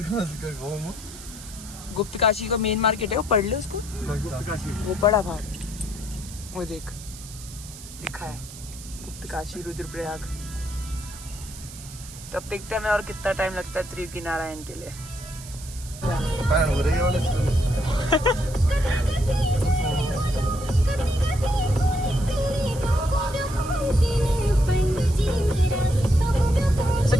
गुप्त काशी का मेन मार्केट है, वो पढ़ ले उसको। वो बड़ा भाग वो देख लिखा है गुप्त काशी रुद्रप्रयाग। तब देखते हैं मैं और कितना टाइम लगता है त्रियुगी नारायण के लिए।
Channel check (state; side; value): noise; right; hiss, 15 dB below the sound